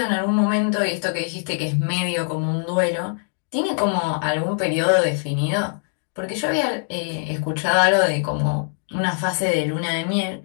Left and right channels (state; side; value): silent; right; digital silence